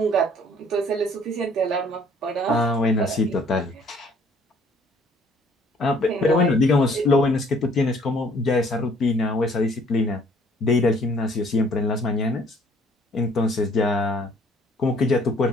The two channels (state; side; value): normal; both; correlation 0.59